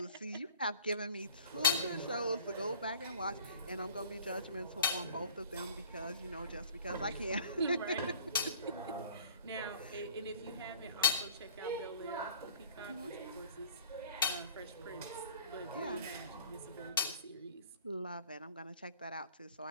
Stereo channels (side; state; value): both; inverted; correlation -0.47